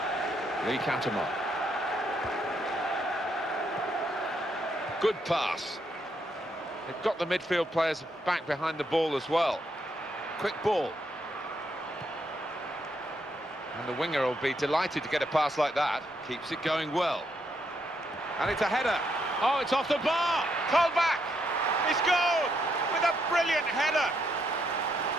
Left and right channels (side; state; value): both; normal; correlation 0.77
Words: Lee Catamon. Good pass. They've got the midfield players back behind the ball as well. Quick ball. And the winger will be delighted to get a pass like that. Keeps it going well. And it's a header. Oh, it's off the bar. Colback. He's goal with a brilliant header.